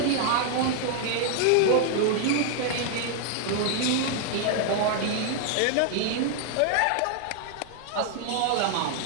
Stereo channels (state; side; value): different; both; correlation 0.00